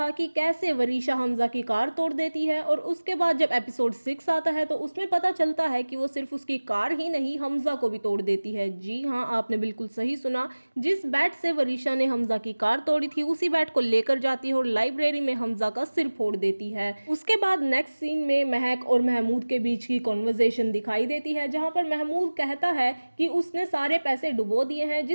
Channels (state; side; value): inverted; both; correlation -1.00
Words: कि कैसे वरीशा हमजा की कार तोड़ देती है, और उसके बाद जब एपिसोड 6 आता है तो उसमें पता चलता है कि वो सिर्फ उसकी कार ही नहीं हमजा को भी तोड़ देती है। जी हाँ, आपने बिल्कुल सही सुना। जिस बैट से वरीशा ने हमजा की कार तोड़ी थी उसी बैट को लेकर जाती है और लाइब्रेरी में हमजा का सिर फोड़ देती है। उसके बाद नेक्स्ट सीन में महक और महमूद के बीच की कॉन्वर्जेशन दिखाई देती है, जहाँ पर महमूद कहता है कि उसने सारे पैसे डुबो दिए हैं,